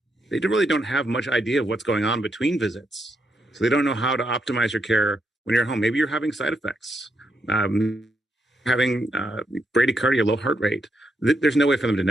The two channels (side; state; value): both; normal; correlation 0.80